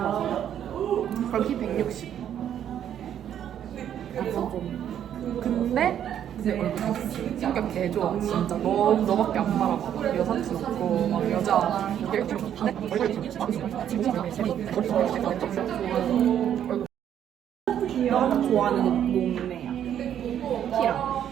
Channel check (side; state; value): left; quieter; 9.9 dB